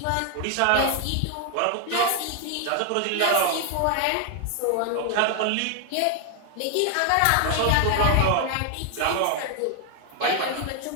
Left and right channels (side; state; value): both; different; correlation 0.00